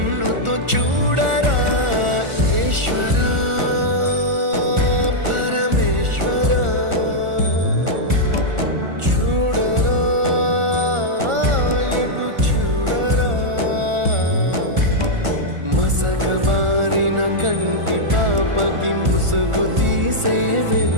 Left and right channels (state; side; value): late; left; 1.4 ms